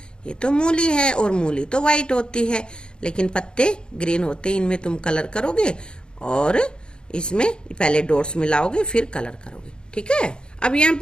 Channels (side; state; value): right; late; 0.050 ms